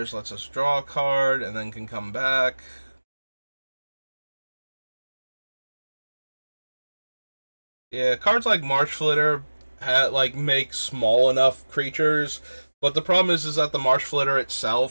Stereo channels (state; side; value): inverted; both; correlation -1.00